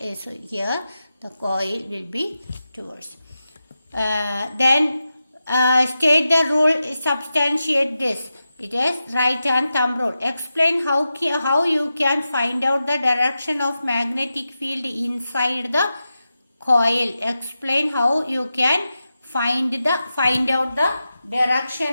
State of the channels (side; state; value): both; inverted; correlation -0.91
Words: so here the coil will be towards. Then state the rule, substantiate this. It is right hand thumb rule. Explain how you can find out the direction of magnetic field inside the coil. Explain how you can find out the